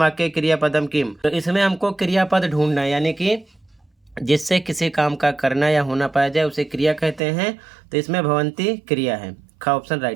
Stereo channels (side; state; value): left; drops out; at 7.2 s